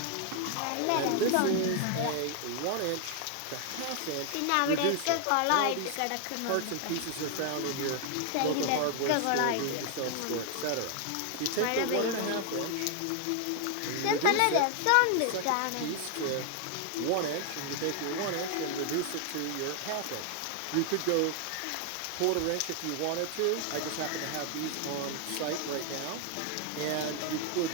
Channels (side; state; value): both; different; correlation 0.00